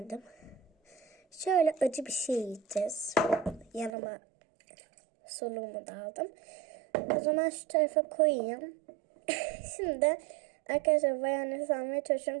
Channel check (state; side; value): drops out; left; at 3.9 s